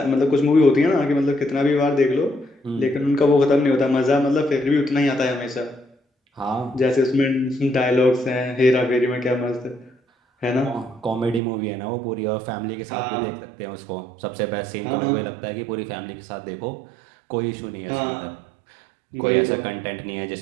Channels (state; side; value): drops out; left; at 11.4 s